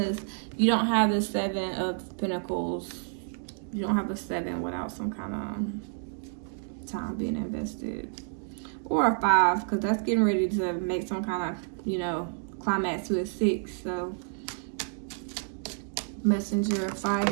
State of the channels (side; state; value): left; silent; 58 dB below the other